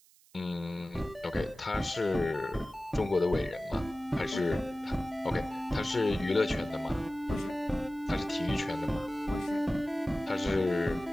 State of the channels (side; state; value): right; noise; hiss, 28 dB below the sound